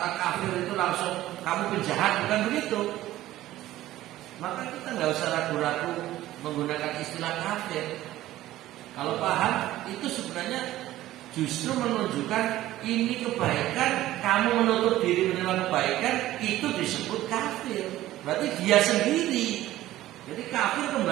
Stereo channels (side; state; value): left; quieter; 15.0 dB